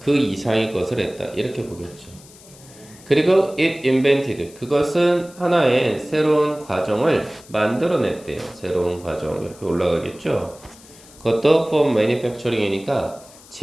이상의 것을 했다. 이렇게 보겠죠. 그리고 it invented, 그것은 하나의 새로운 과정을 만들어냈대요. 새로운 과정 이렇게 올라가겠죠. 그것도 for manufacturing이니까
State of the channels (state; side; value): noise; left; hiss, 23 dB below the sound